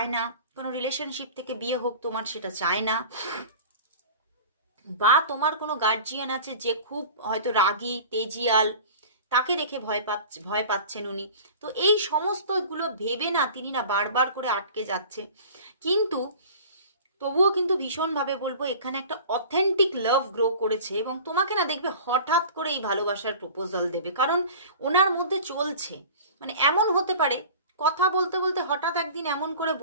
না কোনো রিলেশনশিপ থেকে বিয়ে হোক, তোমার সেটা চায় না, বা তোমার কোনো গার্জিয়ান আছে যে খুব হয়তো রাগী তেজিয়াল, তাকে দেখে ভয় পাচ্ছেন উনি। তো এই সমস্তগুলো ভেবে না তিনি না বারবার করে আটকে যাচ্ছে। কিন্তু তবুও কিন্তু ভীষণভাবে বলবো এখানে একটা অথেন্টিক লাভ গ্রো করেছে, এবং তোমাকে না দেখবে হঠাৎ করে এই ভালোবাসার প্রপোজাল দেবে, কারণ ওনার মধ্যে চলছে। মানে এমন হতে পারে কথা বলতে বলতে হঠাৎ একদিন এমন করে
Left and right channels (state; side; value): inverted; both; correlation -0.40